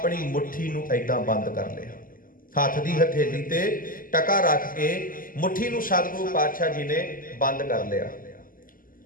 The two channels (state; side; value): late; right; 0.41 ms